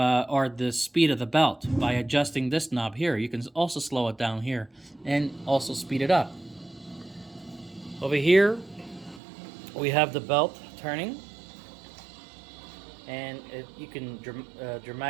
the speed of the belt by adjusting this knob here. You can also slow it down here and also speed it up. Over here, we have the belt turning, and you can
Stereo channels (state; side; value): drops out; left; at 9.2 s